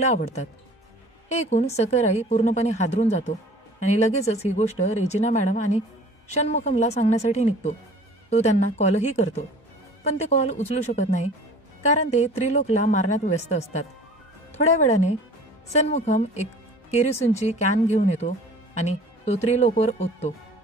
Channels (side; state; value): both; normal; correlation 0.46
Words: आवडतात. हे ऐकून सकराई पूर्णपणे हादरून जातो आणि लगेचच ही गोष्ट रेजिना मॅडम आणि षण्मुखमला सांगण्यासाठी निघतो. तो त्यांना कॉलही करतो, पण ते कॉल उचलू शकत नाही, कारण ते त्रिलोकला मारण्यात व्यस्त असतात. थोड्या वेळाने षण्मुखम एक केरोसिनची कॅन घेऊन येतो आणि तो त्रिलोकवर ओततो.